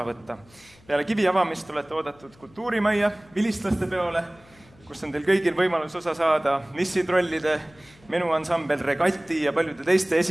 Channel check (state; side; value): noise; left; hum, 28 dB below the sound